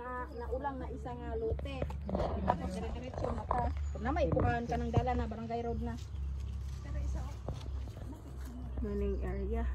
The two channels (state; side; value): identical; both; correlation 1.00